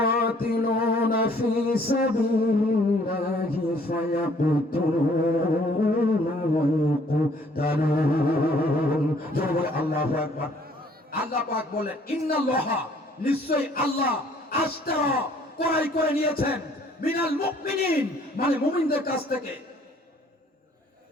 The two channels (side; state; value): both; normal; correlation 0.60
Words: في سبيل الله فيقتلون ويقتلون। আল্লাহু আকবার। আল্লাহ পাক বলেন, ইন্নাল্লাহা, নিশ্চয়ই আল্লাহ, আশতারা, ক্রয় করে নিয়েছেন, মিনাল মুমিনিন, মানে মুমিনদের কাছ থেকে,